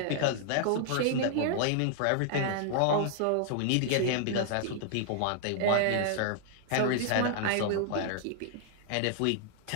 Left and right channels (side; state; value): both; different; correlation 0.00